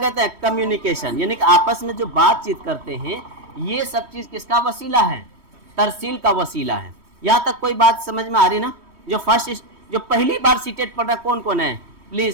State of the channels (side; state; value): left; late; 3.1 ms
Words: हैं? कम्युनिकेशन, यानी कि आपस में जो बातचीत करते हैं, ये सब चीज़ किसका वसीला है? तरसील का वसीला है। यहाँ तक कोई बात समझ में आ रही ना? जो पहली बार सीटेट पढ़ रहा कौन कौन है?